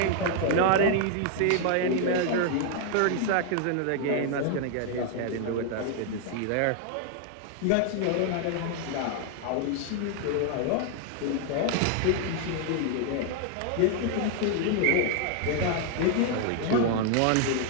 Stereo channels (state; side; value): different; both; correlation 0.00